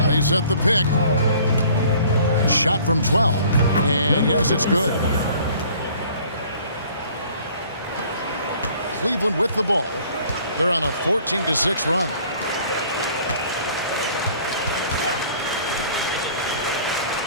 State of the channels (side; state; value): both; inverted; correlation -0.53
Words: They set the pick. Shot from 12. And yes, it's good. Cleveland with the ball. They're on a 14-6 run.